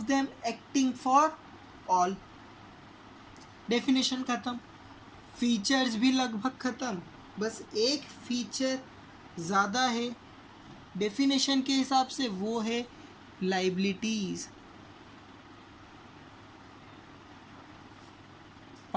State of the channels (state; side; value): identical; both; correlation 1.00